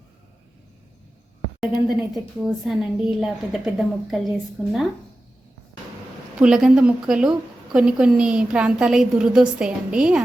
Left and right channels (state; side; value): normal; both; correlation 0.94